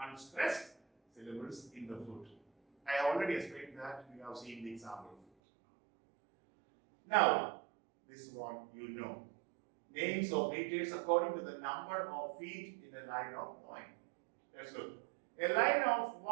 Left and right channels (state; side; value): drops out; left; at 5.2 s